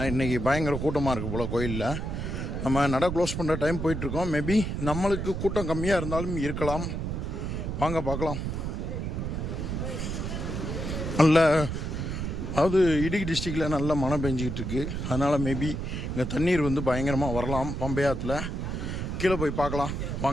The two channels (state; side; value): noise; right; rumble, 3 dB below the sound